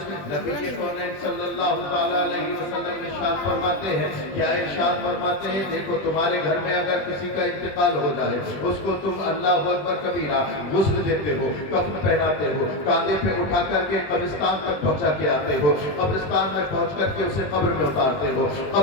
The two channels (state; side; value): late; right; 20 ms